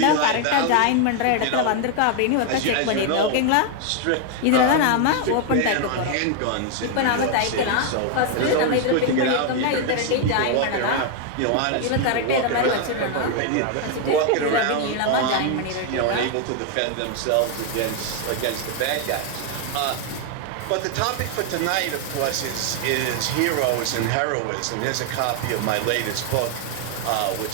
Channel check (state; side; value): different; both; correlation 0.00